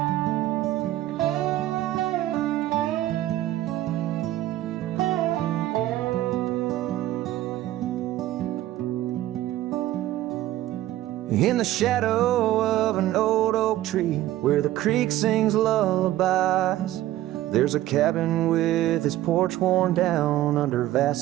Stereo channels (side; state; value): left; quieter; 14.5 dB